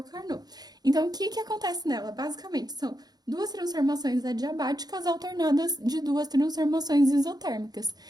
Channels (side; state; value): left; late; 0.19 ms